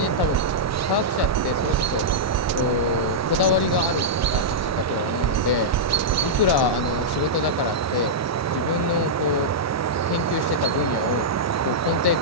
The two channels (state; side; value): normal; both; correlation -0.09